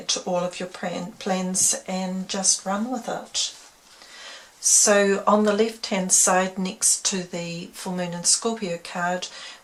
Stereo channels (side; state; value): both; identical; correlation 1.00